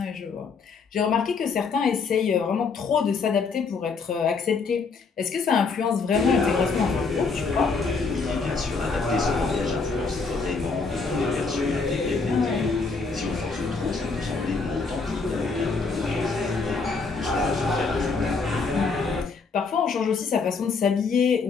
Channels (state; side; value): quieter; right; 4.6 dB